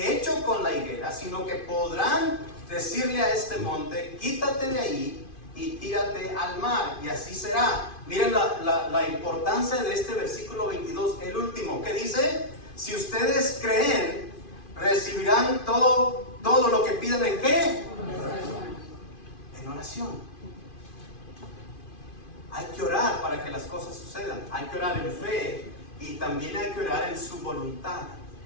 hecho con la higuera, sino que podrán decirle a este monte, quítate de ahí y tírate al mar, y así será. Miren la importancia de este versículo 22, el último, que dice, si ustedes creen, recibirán todo lo que pidan. ¿En qué? En oración. Hay que orar para que las cosas sucedan. Hay que orar en fe y también hay que orar en su voluntad.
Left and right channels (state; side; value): late; right; 2.5 ms